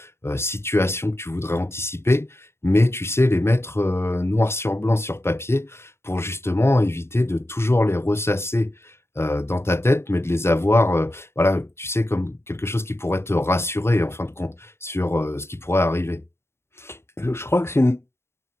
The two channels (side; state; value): right; late; 0.12 ms